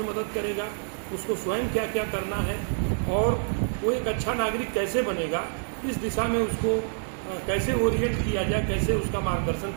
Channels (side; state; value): left; silent; digital silence